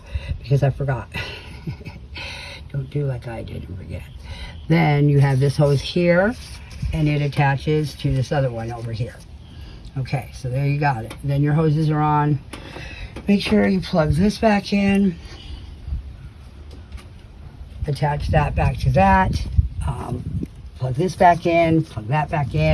because I forgot. Don't do like I did and forget. Then you have this hose here, and it attaches to this other one over here. Okay, so there you got it. Then your hoses are on. Make sure you plug this back in. Attach that back to that. Plug this back in, plug that back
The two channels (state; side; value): identical; both; correlation 1.00